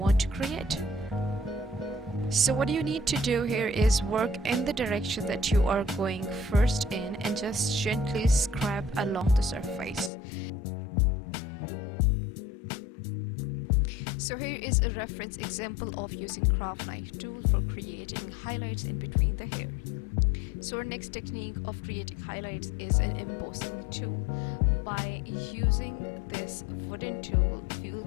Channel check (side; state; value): right; drops out; at 10.1 s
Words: to create. So what you need to do here is work in the direction that you are going first in and just gently scrap along the surface. So here is a reference example of using craft knife tool for creating highlights in between the hair. So our next technique of creating highlights is an embossing tool. By using this wooden tool, we will